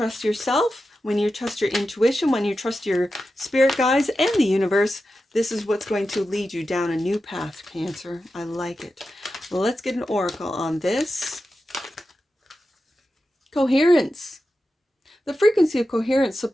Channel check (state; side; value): normal; both; correlation 0.91